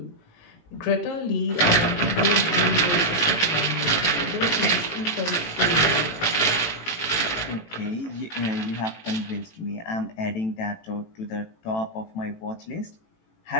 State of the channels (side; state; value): right; late; 18 ms